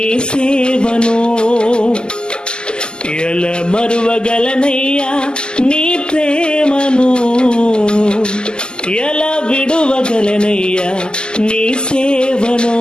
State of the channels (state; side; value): late; right; 0.047 ms